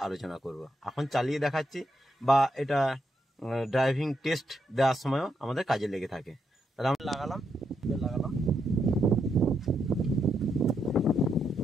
আলোচনা করব। এখন চালিয়ে দেখাচ্ছি বা এটা ড্রাইভিং টেস্ট দেওয়ার সময়ও আমাদের কাজে লেগে থাকে। তাহলে আমরা লাগালাম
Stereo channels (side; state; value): both; normal; correlation 0.80